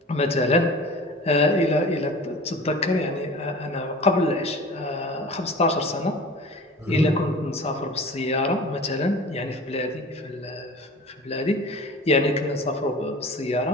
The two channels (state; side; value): normal; both; correlation 0.39